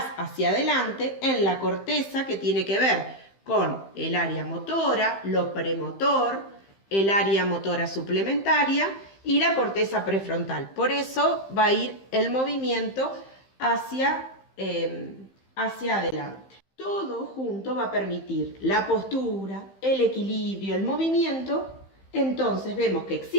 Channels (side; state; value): right; late; 15 ms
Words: hacia adelante en la corteza, que tiene que ver con el área motora, lo premotor, el área motora suplementaria y la corteza prefrontal. Por eso va a ir el movimiento hacia hacia adelante. Todo junto va a permitir la postura, el equilibrio, el movimiento. Entonces vemos que